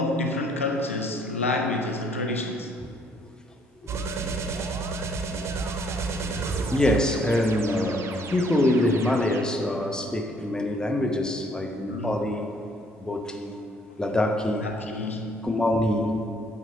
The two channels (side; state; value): both; normal; correlation 0.64